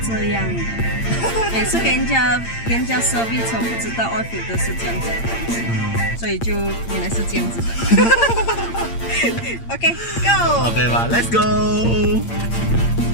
这样的，每次跟人家 service 车不知道 oil filter 是这样子的东西，所以就原来是这样子的。OK，Go。OK 吧，Let's go。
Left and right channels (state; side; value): late; right; 8.7 ms